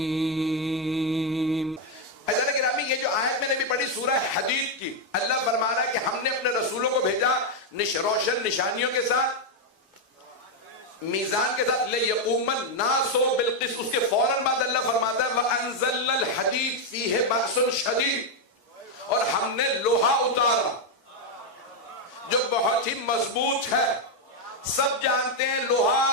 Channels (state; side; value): normal; both; correlation 0.02